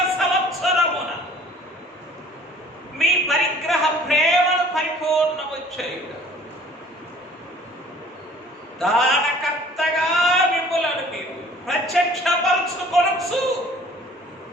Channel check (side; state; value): both; normal; correlation 0.52